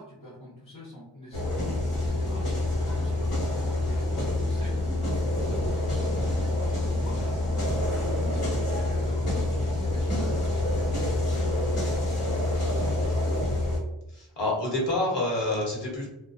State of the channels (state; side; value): normal; both; correlation 0.64